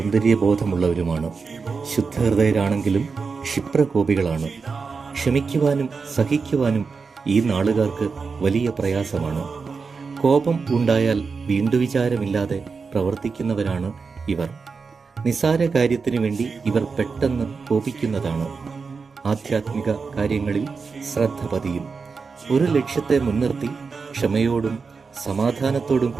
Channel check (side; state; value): left; quieter; 4.9 dB